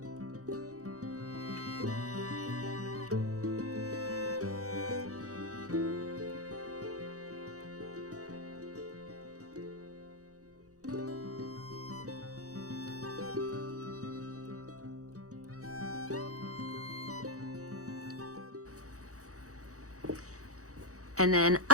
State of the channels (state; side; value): late; left; 0.66 ms